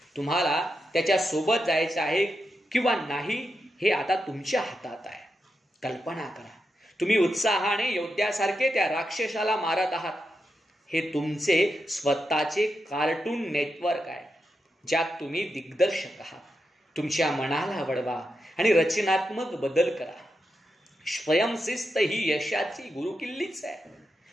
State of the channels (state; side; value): normal; both; correlation 0.87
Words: तुम्हाला त्याच्या सोबत जायचं आहे किंवा नाही हे आता तुमच्या हातात आहे. कल्पना करा, तुम्ही उत्साहाने योद्ध्यासारखे त्या राक्षसाला मारत आहात. हे तुमचे स्वतःचे कार्टून नेटवर्क आहे, ज्यात तुम्ही दिग्दर्शक आहात. तुमच्या मनाला वळवा आणि रचनात्मक बदल करा. स्वयंशिस्त ही यशाची गुरुकिल्लीच आहे.